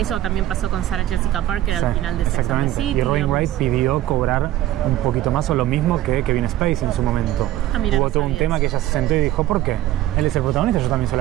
también pasó con Sarah Jessica Parker al final de Sex and the City. Y Robin Wright pidió cobrar un poquito más o lo mismo que Kevin Spacey en su momento. Hubo todo un tema que ella se sentó y dijo, ¿por qué? Él es el protagonista, yo también soy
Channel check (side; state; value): left; quieter; 14.2 dB